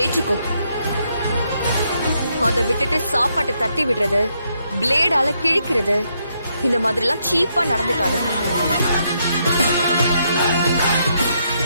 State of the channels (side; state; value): both; inverted; correlation -0.76